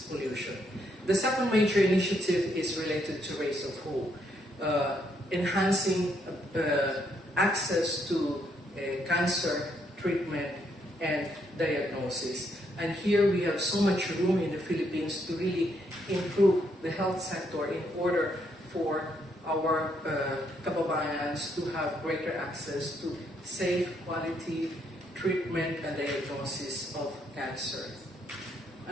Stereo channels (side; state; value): both; normal; correlation 0.74